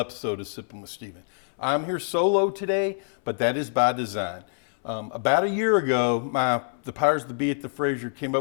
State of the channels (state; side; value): silent; right; 61 dB below the other